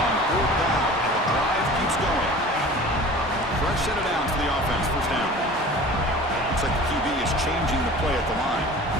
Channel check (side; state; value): both; normal; correlation 0.41